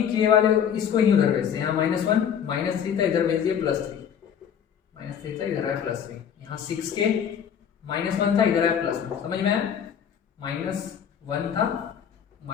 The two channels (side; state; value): right; quieter; 8.3 dB